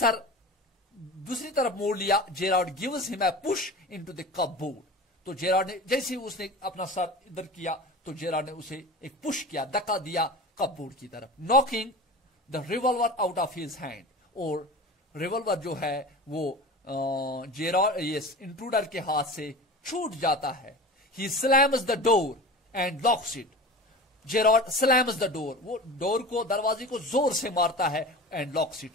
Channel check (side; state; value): both; normal; correlation 0.33